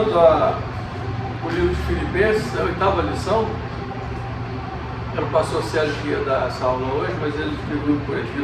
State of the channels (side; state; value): both; identical; correlation 1.00